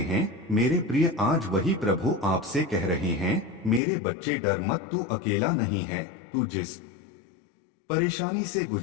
हैं? मेरे प्रिय, आज वही प्रभु आपसे कह रहे हैं, मेरे बच्चे डर मत, तू अकेला नहीं है। तू जिस परेशानी से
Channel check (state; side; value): drops out; right; at 3.8 s